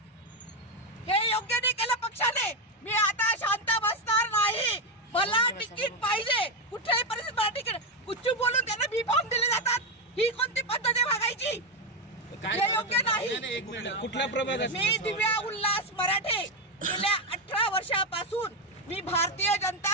हे योग्य नाही केलं पक्षाने. मी आता शांत बसणार नाही. मला तिकीट पाहिजे. कुठल्याही परिस्थितीत मला तिकीट. कुठची बोलून त्यांना बी फॉर्म दिले जातात. ही कोणती पद्धत आहे वागायची? हे योग्य नाही. कुठल्या प्रभागात? मी दिव्या उल्हास मराठे. गेल्या 18 वर्षापासून मी भारतीय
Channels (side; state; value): both; normal; correlation 0.07